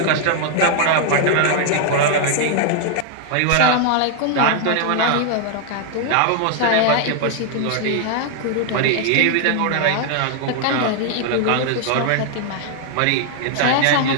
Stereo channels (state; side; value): different; both; correlation 0.00